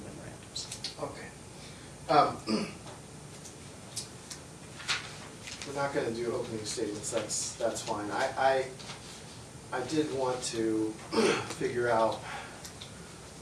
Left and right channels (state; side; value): identical; both; correlation 1.00